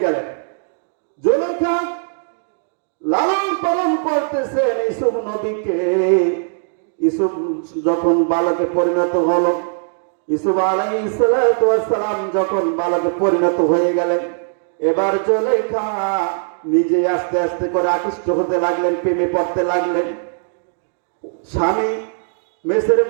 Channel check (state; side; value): silent; left; digital silence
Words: গেলেন। জুলেখা লালন পালন করতেছেন ইউসুফ নবীকে। ইউসুফ যখন বালকে পরিণত হলো, ইউসুফ আলাইহিস সালাম যখন বালকে পরিণত হয়ে গেলেন, এবার জুলেখা নিজে আস্তে আস্তে করে আকৃষ্ট হতে লাগলেন, প্রেমে পড়তে লাগলেন। স্বামী মিশর